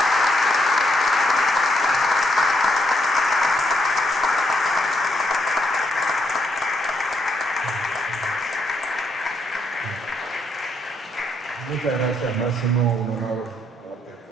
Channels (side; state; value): both; normal; correlation 0.75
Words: Muchas gracias, Máximo. Un honor haberte